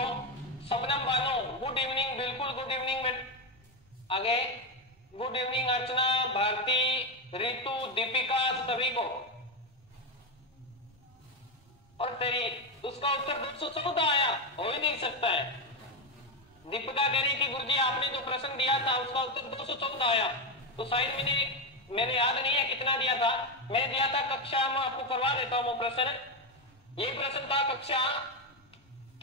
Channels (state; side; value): normal; both; correlation 0.10